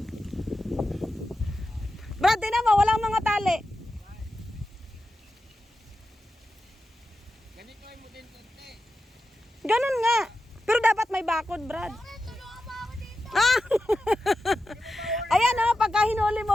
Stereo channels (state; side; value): normal; both; correlation 0.91